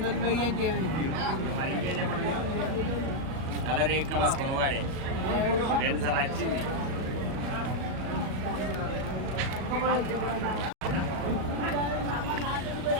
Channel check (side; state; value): left; late; 38 ms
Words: అంటే కలర్ ఏ కమస్ కొనవాడే 2 సార్లు వచ్చింది.